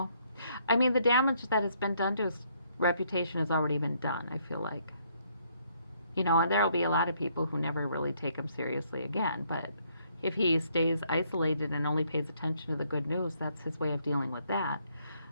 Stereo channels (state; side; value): inverted; both; correlation -0.69